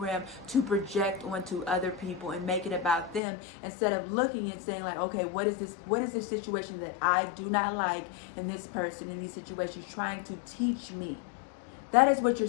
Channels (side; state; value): right; drops out; at 3.2 s